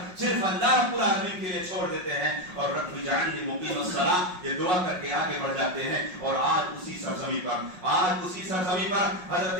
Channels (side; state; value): left; late; 5.5 ms